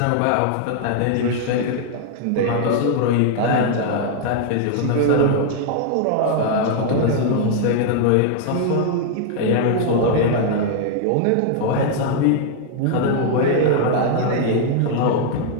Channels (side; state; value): both; different; correlation 0.00